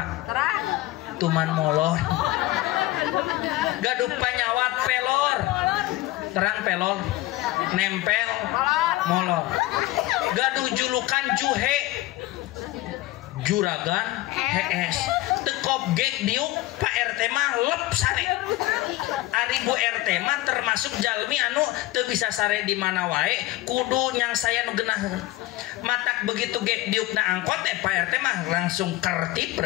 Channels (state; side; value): quieter; right; 17.4 dB